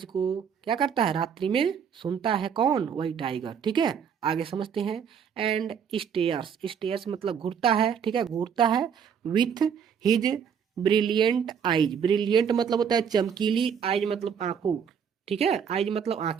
को क्या करता है, रात्रि में सुनता है। कौन? वही टाइगर। ठीक है। आगे समझते हैं। एंड स्टेयर्स, स्टेयर्स मतलब घूरता है। ठीक है, घूरता है। With his brilliant eyes, brilliant मतलब होता है चमकीली, आइज मतलब आंखों। ठीक है, आइज मतलब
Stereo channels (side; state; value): left; quieter; 7.4 dB